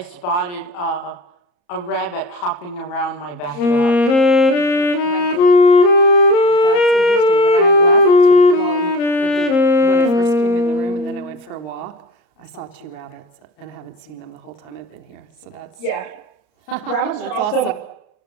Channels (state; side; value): late; right; 33 ms